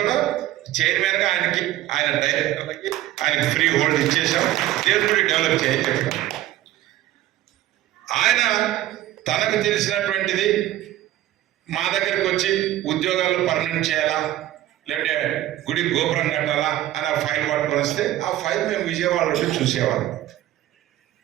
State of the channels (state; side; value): quieter; left; 14.1 dB